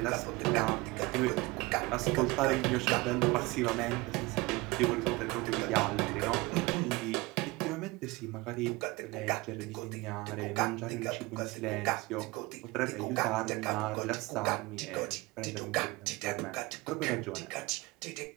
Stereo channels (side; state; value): left; quieter; 23.0 dB